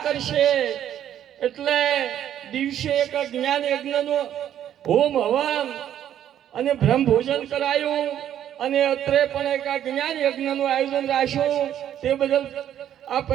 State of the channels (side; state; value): left; quieter; 10.7 dB